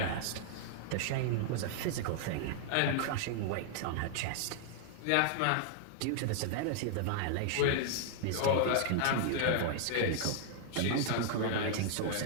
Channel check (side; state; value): both; different; correlation 0.00